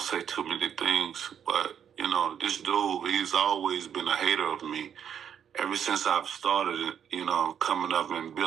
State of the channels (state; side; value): quieter; left; 8.6 dB